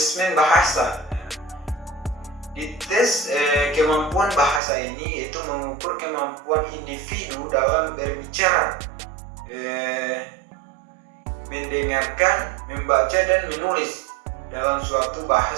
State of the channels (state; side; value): drops out; left; at 4.6 s